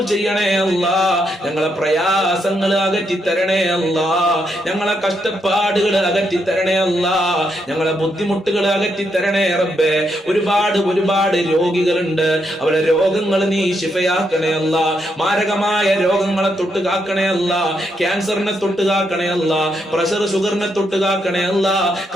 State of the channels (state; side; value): normal; both; correlation 0.79